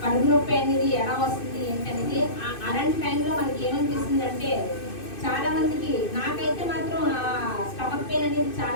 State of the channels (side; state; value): right; late; 2.6 ms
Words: కడుపు నొప్పి అనేది ఎలా వస్తుంది ఏంటనేది అలాంటి టైంలో మనకి ఏమనిపిస్తుంది అంటే చాలా మందికి, నాకైతే మాత్రం ఆ స్టమక్ పెయిన్ అనేది